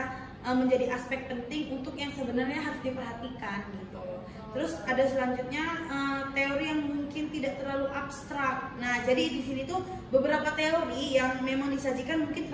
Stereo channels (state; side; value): identical; both; correlation 1.00